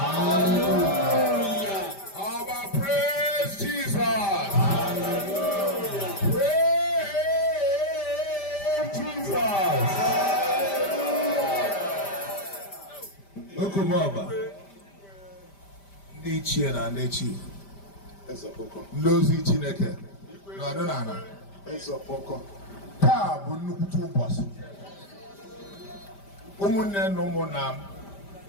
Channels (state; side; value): late; right; 5.1 ms